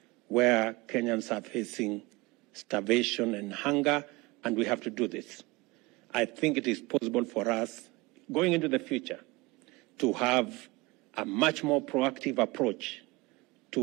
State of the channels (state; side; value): quieter; left; 23.1 dB